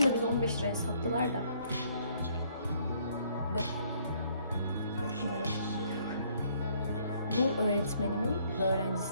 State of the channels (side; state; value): both; inverted; correlation -0.65